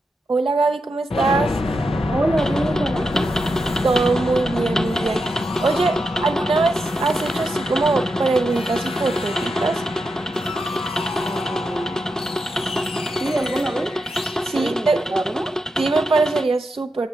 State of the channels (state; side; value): normal; both; correlation 0.86